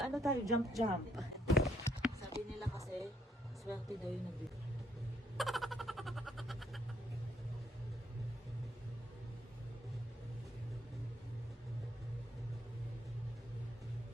tayo? Jump. Sabi nila kasi, swerte daw yung nabili.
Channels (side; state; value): both; normal; correlation 0.70